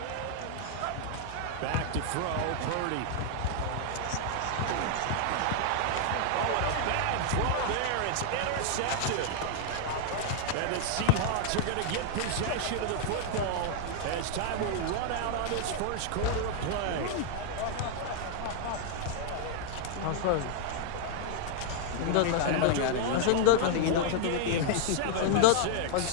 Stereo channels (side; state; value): both; different; correlation 0.00